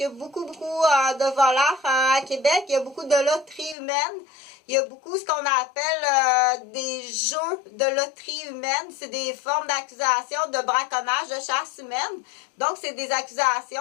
y a beaucoup de voleurs à Québec. Il y a beaucoup de loteries humaines. Il y a beaucoup ce qu'on appelle des jeux de loterie humaine. C'est des formes d'accusation de braconnage, de chasse humaine. Donc, c'est des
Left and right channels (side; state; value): right; drops out; at 3.8 s